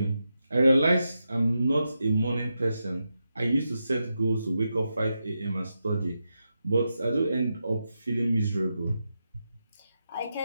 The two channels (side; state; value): both; inverted; correlation -0.87